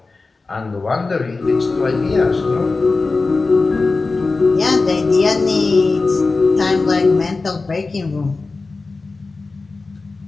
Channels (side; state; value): right; quieter; 3.8 dB